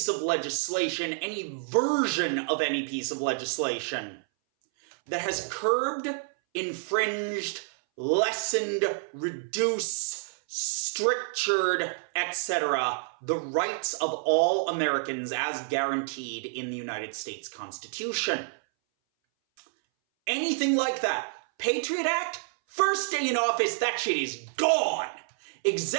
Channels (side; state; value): left; silent; 59 dB below the other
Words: of legislation, any version of any piece of legislation that has curbed, infringed, lessened, reduced, strictured, etc., the rights of all Americans as guaranteed in the United States Constitution. Anything like that. Patriot Act, first day in office, that shit is gone.